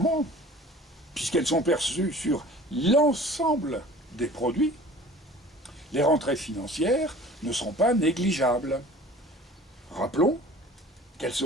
puisqu'elles sont perçues sur l'ensemble des produits, les rentrées financières ne seront pas négligeables. Rappelons qu'elles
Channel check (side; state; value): both; normal; correlation 0.45